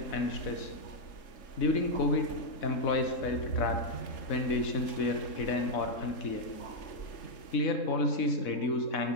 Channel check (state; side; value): late; right; 3.7 ms